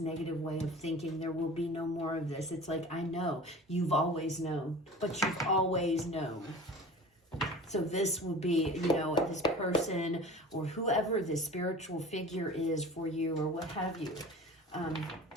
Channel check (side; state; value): both; normal; correlation 0.38